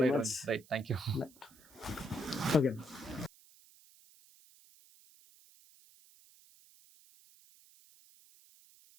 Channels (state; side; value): noise; right; hiss, 25 dB below the sound